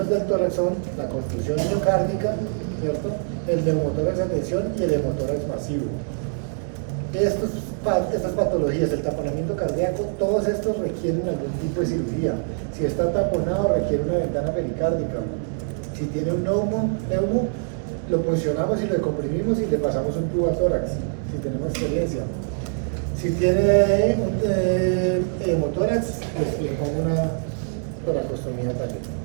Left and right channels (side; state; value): left; silent; 63 dB below the other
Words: del tórax son la contusión miocárdica, ¿cierto? El neumotórax de atención y el hemotórax masivo. Estas patologías, el taponamiento cardíaco, todos estos requieren algún tipo de cirugía. Si está taponado, requiere una ventana pericárdica. Si tiene un neumo, lo puncionamos y lo comprimimos y le pasamos un tubo a tórax, si tenemos experiencia. Si tiene un hemotórax, le pongo una toracostomía también.